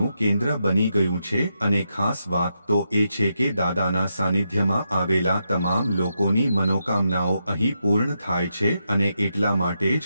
કેન્દ્ર બની ગયું છે અને ખાસ વાત તો એ છે કે દાદાના સાનિધ્યમાં આવેલા તમામ લોકોની મનોકામનાઓ અહીં પૂર્ણ થાય છે અને એટલા માટે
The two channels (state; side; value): inverted; both; correlation -0.84